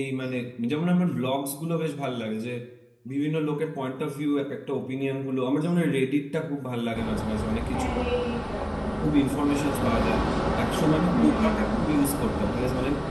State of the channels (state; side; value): identical; both; correlation 1.00